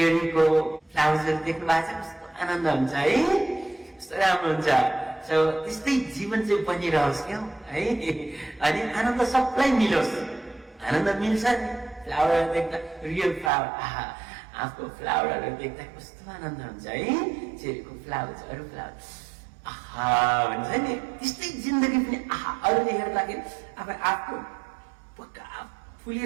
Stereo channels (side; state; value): left; drops out; at 13.5 s